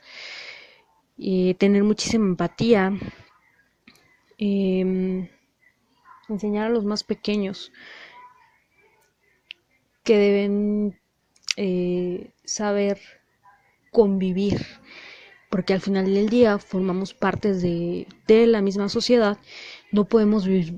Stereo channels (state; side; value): identical; both; correlation 1.00